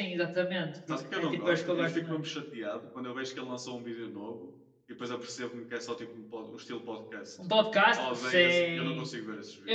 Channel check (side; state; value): both; identical; correlation 1.00